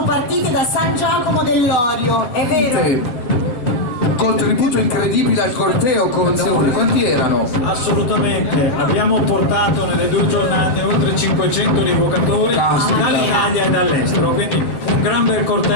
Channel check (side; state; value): right; late; 7.9 ms